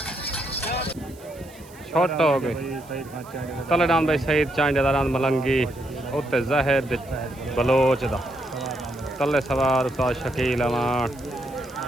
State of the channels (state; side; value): noise; right; hiss, 24 dB below the sound